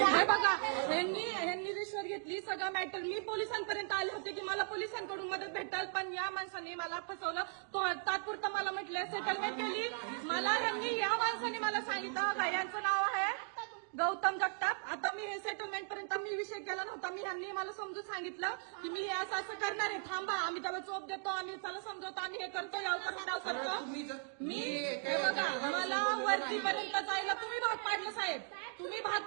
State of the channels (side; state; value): left; silent; 53 dB below the other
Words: बघा, ह्यांनी रिश्वत घेतली, सगळं मॅटर. मी पोलिसांपर्यंत आले होते की मला पोलिसांकडून मदत भेटेल, पण या माणसाने मला फसवलं. तो तात्पुरतं मला म्हटलं सेटलमेंट केली. या माणसाने मला सांगितलं यांचं नाव आहे गौतम जगताप. आता मी हे सेटलमेंट पर्यंत मी विषय केला नव्हता. ह्यांनी मला समजून सांगितलं की मी हे असं करणार आहे, थांबा, आम्ही त्याला चोप देतो, आम्ही त्याला समजवतो, आम्ही हे करतो, याव करतो. मी हे बघा, मला वरतीपर्यंत जायला तुम्ही भाग पाडलं साहेब, तुम्ही भाग